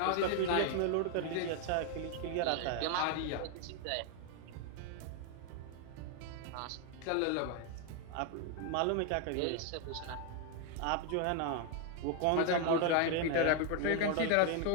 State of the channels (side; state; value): both; different; correlation 0.01